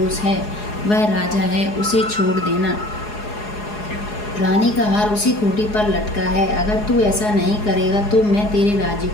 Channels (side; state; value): right; late; 4.8 ms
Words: है, वह राजा है, उसे छोड़ देना। रानी का हार उसी खूंटी पर लटका है। अगर तू ऐसा नहीं करेगा तो मैं तेरे राज्य